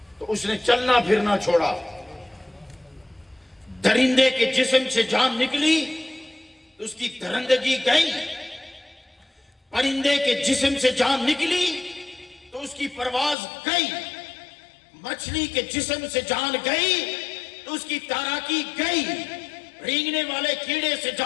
تو اس نے چلنا پھرنا چھوڑا. درندے کے جسم سے جان نکلی تو اس کی درندگی گئی. پرندے کے جسم سے جان نکلی تو اس کی پرواز گئی. مچھلی کے جسم سے جان گئی تو اس کی تیراکی گئی. رینگنے والے کیڑے سے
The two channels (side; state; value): right; drops out; at 13.4 s